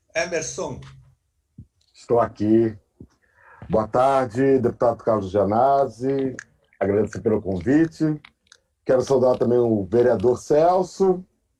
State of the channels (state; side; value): identical; both; correlation 1.00